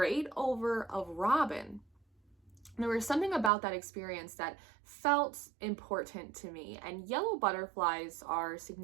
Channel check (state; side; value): drops out; left; at 3.5 s